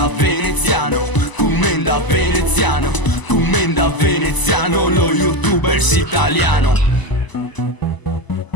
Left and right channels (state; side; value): late; right; 1.0 ms